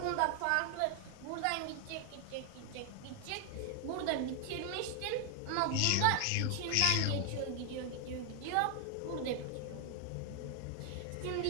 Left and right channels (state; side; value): different; both; correlation 0.00